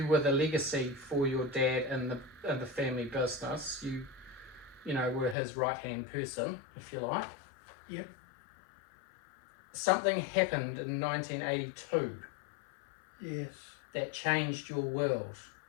were the legacy for your dad in the family business. You were his right-hand person, if you like. Yep. Something happened in 1982 Yes. that changed your world.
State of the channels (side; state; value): right; drops out; at 5.4 s